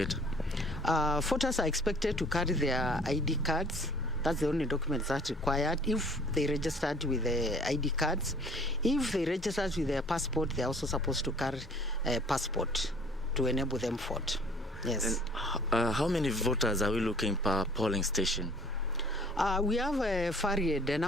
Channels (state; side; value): normal; both; correlation 0.53